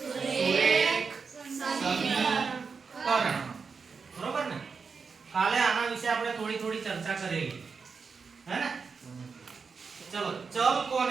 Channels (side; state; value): left; quieter; 5.3 dB